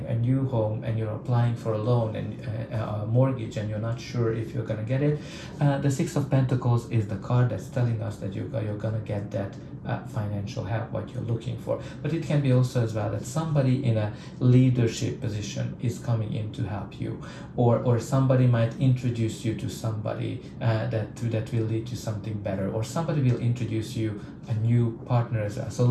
a new home, and you're applying for a loan and a mortgage, and you're not sure if you're going to get it. The Six of Pentacles is the card that's telling us that you're going to get that financial help, what you're looking for. But it can be also as well that somebody in a leadership position is coming in to help you, or somebody might introduce you to somebody that will lead to something better, or somebody will introduce you a new partner as well. So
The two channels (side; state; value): both; identical; correlation 1.00